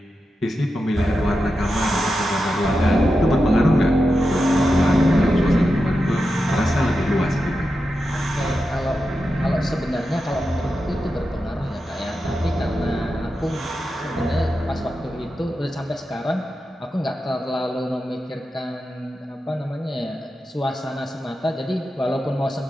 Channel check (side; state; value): both; normal; correlation 0.90